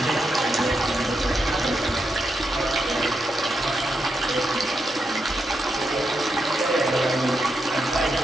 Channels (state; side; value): normal; both; correlation 0.84